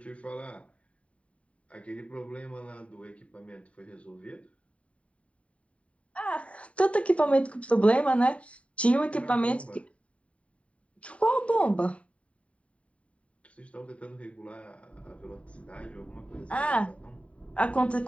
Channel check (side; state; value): right; late; 0.064 ms